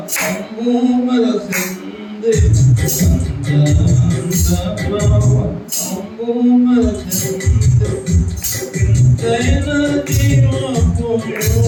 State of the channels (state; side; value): identical; both; correlation 1.00